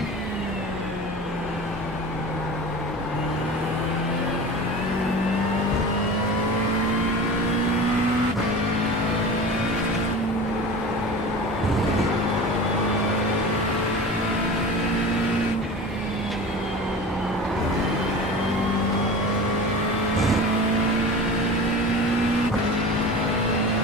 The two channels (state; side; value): normal; both; correlation 0.34